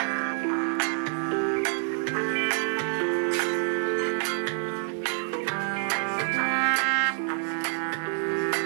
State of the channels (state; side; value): silent; left; 60 dB below the other